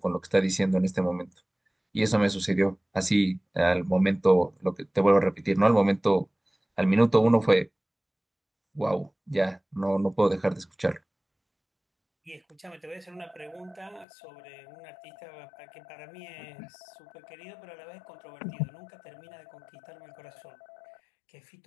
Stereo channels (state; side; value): drops out; right; at 14.1 s